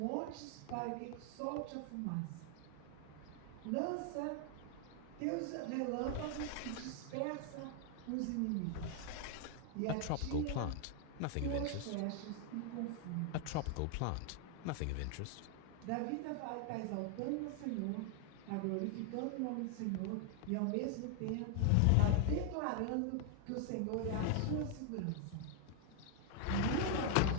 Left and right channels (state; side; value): different; both; correlation 0.00